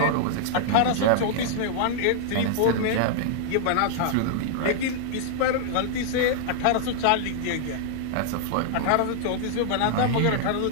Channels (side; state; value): both; different; correlation -0.01